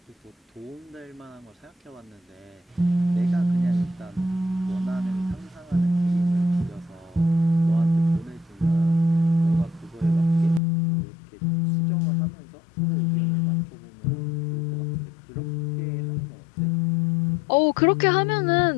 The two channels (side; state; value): right; drops out; at 10.6 s